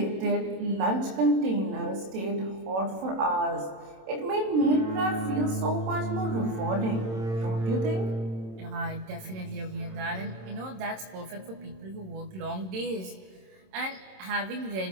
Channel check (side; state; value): left; late; 27 ms